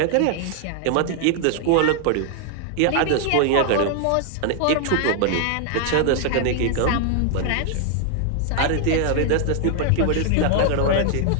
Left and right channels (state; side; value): different; both; correlation 0.00